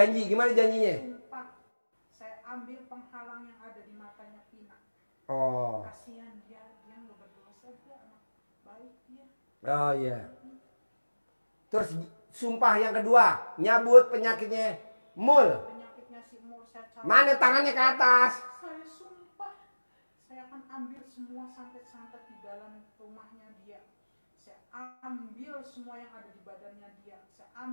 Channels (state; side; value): inverted; both; correlation -1.00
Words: gimana janjinya? Sumpah. Saya ambil penghalang yang ada di matanya Pina. Oh. Kasihan dia nggak berdosa, dia anak baik dia. Oh iya. Terus sumpah yang kedua, nyabut penyakitnya Mul. Penyakitnya si Mul saya cabut. Mana tangannya ke atas? Saya sumpah, saya akan ambil semua santet-santet di dalam rumahnya dia. Saya ambil semua yang ada di badannya dia. Saya